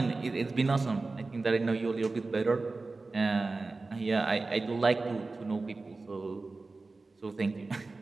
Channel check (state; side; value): quieter; left; 3.6 dB